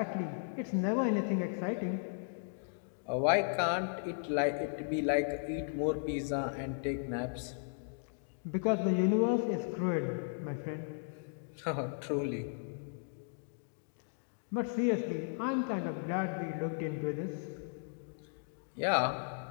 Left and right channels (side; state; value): right; silent; digital silence